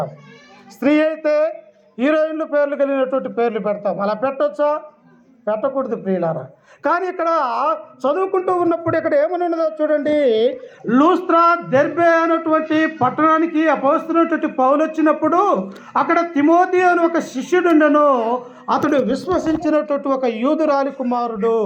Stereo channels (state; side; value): identical; both; correlation 1.00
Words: స్త్రీ అయితే హీరోయిన్లు పేర్లు కలిగినటువంటి పేర్లు పెడతాం. అలా పెట్టొచ్చా? పెట్టకూడదు ప్రియులారా. కానీ ఇక్కడ చదువుకుంటూ ఉన్నప్పుడు ఇక్కడ ఏమని ఉన్నదో చూడండి. లూస్త్రా, దెర్బే అనేటువంటి పట్టణానికి అపోస్తున్నటువంటి పౌలు వచ్చినప్పుడు అక్కడ తిమోతి అని ఒక శిష్యుడు ఉండెను. అతడు విశ్వసించినటువంటి ఒక యూదురాలి కుమారుడు.